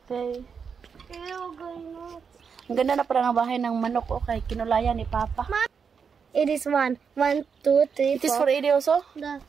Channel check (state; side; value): quieter; left; 6.2 dB